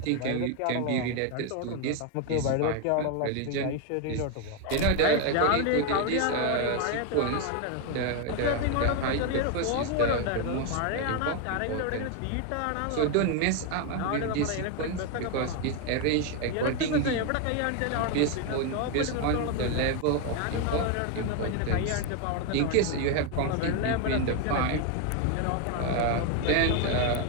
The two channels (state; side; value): different; both; correlation 0.01